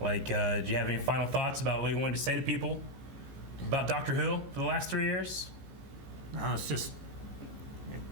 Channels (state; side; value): late; left; 15 ms